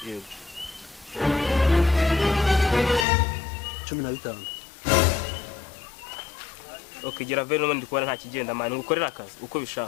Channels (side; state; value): right; drops out; at 3.1 s